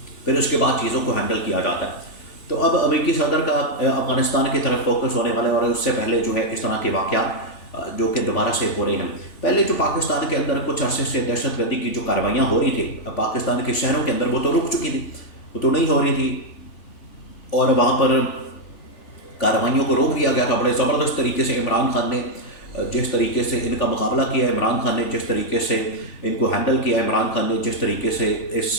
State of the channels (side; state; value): right; late; 3.4 ms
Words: फिर उसके बाद चीज़ों को हैंडल किया जाता है। तो अब अमेरिकी सदर का अफ़गानिस्तान की तरफ फोकस होने वाला है और उससे पहले जो है इस तरह के वाक़यात जो कि दोबारा से हो रहे हैं। पहले जो पाकिस्तान के अंदर कुछ अरसे से दहशतगर्दी की जो कार्रवाइयाँ हो रही थी पाकिस्तान के शहरों के अंदर, वो तो रुक चुकी थी, वो तो नहीं हो रही थी और वहाँ पर कार्रवाइयों को रोक दिया गया था बड़े ज़बरदस्त तरीके से। इमरान खान ने जिस तरीके से इनका मुकाबला किया, इमरान खान ने जिस तरीके से इनको हैंडल किया, इमरान खान ने जिस तरीके से इस